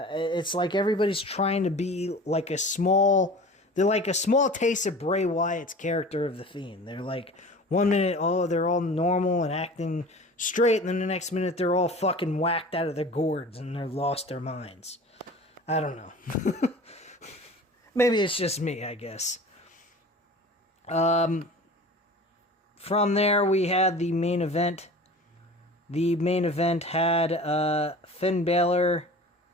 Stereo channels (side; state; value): both; normal; correlation 0.39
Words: like everybody's trying to be like a small... They're like a small taste of Bray Wyatt's character of The Fiend. They're like, 1 minute, oh, they're all normal and acting straight, and then the next minute they're all fucking whacked out of their gourds and they're lost their minds. I don't know. Maybe it's just me, I guess. From there, we had the main event The main event had Finn Balor.